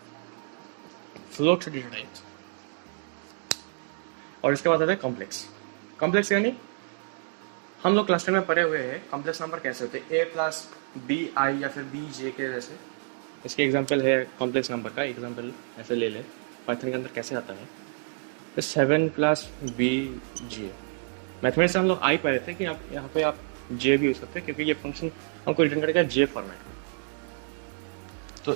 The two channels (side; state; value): left; silent; digital silence